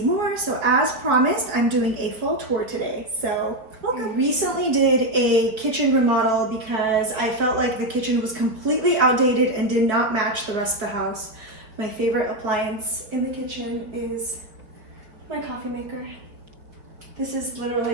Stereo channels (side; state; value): left; late; 4.2 ms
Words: more, so as promised, I'm doing a full tour today, so welcome. I recently did a kitchen remodel because I felt like the kitchen was completely outdated and did not match the rest of the house. My favorite appliance in the kitchen is my coffee maker. This is